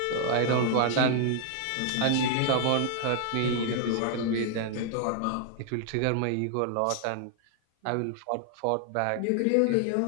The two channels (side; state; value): both; different; correlation 0.00